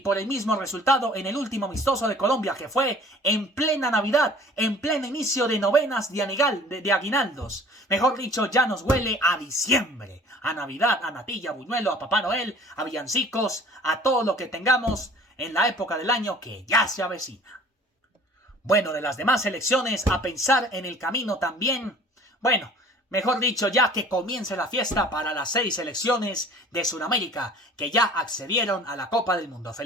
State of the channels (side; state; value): both; normal; correlation 0.49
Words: el mismo resultado en el último amistoso de Colombia, que fue en plena Navidad, en pleno inicio de novenas de aguinaldos. Mejor dicho, ya nos huele a diciembre, a Navidad, a natilla, a buñuelo, a Papá Noel, a villancicos, a todo lo que tengamos en la época del año que ya se avecina. Bueno, de las demás selecciones, a pensar en el camino también. Bueno, mejor dicho, ya que comience la fiesta para las 6 selecciones de Sudamérica que ya accedieron a la Copa del Mundo.